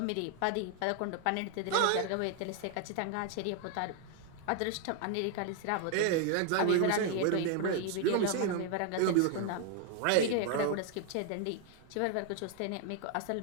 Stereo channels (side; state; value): both; different; correlation 0.00